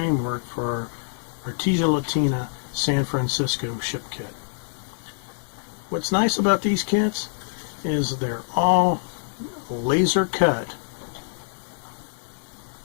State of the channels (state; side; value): silent; right; digital silence